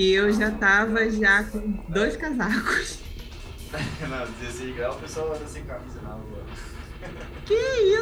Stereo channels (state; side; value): identical; both; correlation 1.00